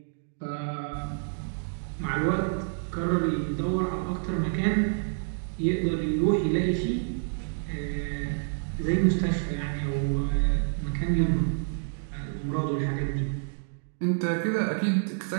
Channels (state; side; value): silent; left; digital silence